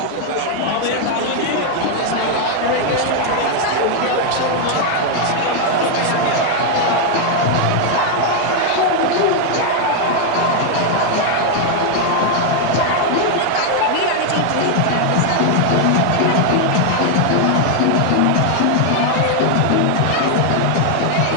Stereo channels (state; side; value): different; both; correlation 0.00